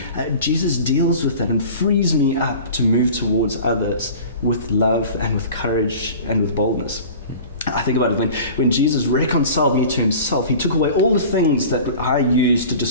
Jesus deals with that and frees me up to move towards others with love and with courage and with boldness. I think about it, when Jesus reconciled me to himself, he took away all the things that I used to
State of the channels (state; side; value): inverted; both; correlation -0.40